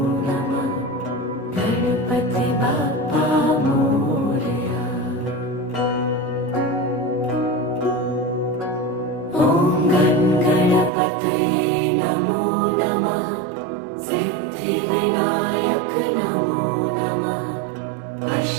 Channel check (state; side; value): drops out; left; at 10.9 s